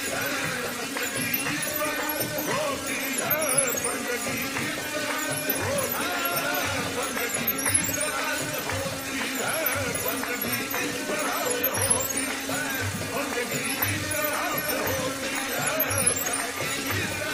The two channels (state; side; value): identical; both; correlation 1.00